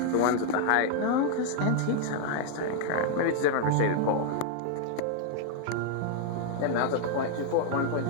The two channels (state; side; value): different; both; correlation 0.00